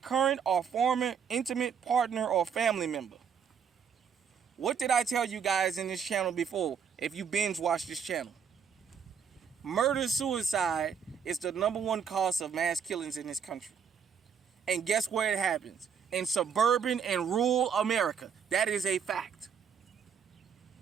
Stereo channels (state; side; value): quieter; left; 7.1 dB